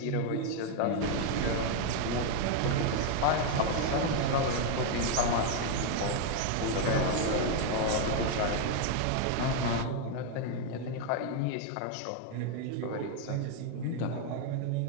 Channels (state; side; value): different; both; correlation 0.00